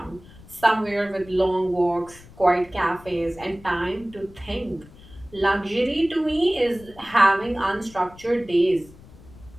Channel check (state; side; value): noise; left; rumble, 21 dB below the sound